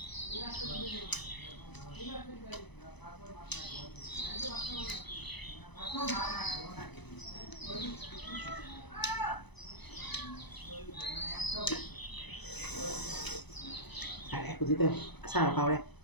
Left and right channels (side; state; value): right; late; 0.99 ms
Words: ꯍꯧꯖꯤꯛꯇ ꯑꯁꯥꯕ ꯐꯥꯎꯔꯦ